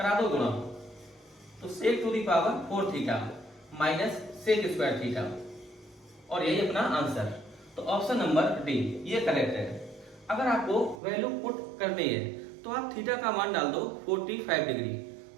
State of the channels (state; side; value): drops out; left; at 11.0 s